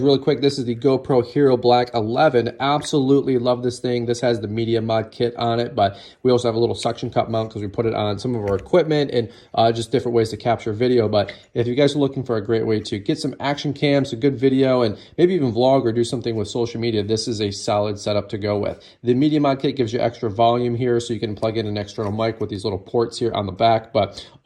quick, this is the GoPro Hero Black 11. Absolutely love this thing. This has the Media Mod kit on it, but we also have a little suction cup mount because we put it on some of our equipment and just different ways to capture video. But if you guys are looking for a great way to get some action cams, a good video, and maybe even vlog or do something with social media, this is a solid setup to go with. The Media Mod kit gives you extra volume here, so you can plug in an external mic with these little ports here on the back. But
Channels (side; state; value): both; identical; correlation 1.00